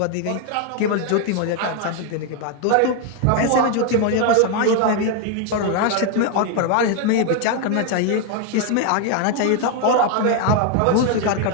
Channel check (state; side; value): different; both; correlation 0.01